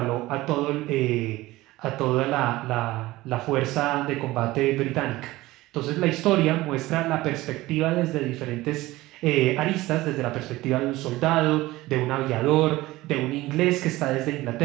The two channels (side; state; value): left; quieter; 18.3 dB